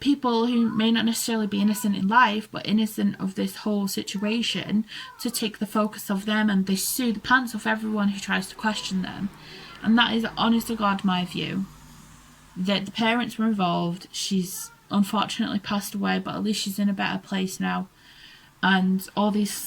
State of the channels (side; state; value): both; identical; correlation 1.00